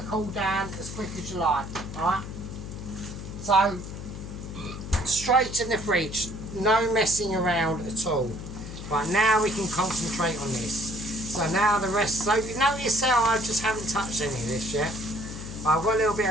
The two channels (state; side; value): noise; left; hum, 9 dB below the sound